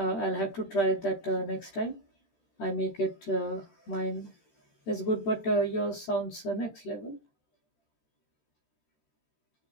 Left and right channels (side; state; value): right; late; 13 ms